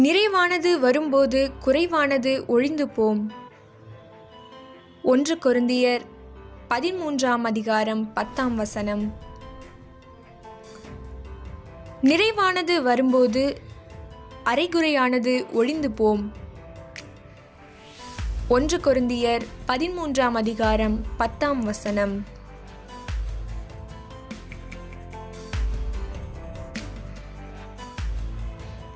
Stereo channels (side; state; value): both; identical; correlation 1.00